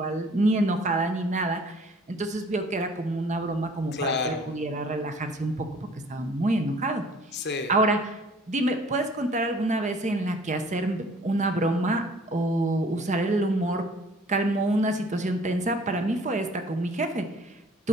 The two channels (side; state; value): both; normal; correlation 0.53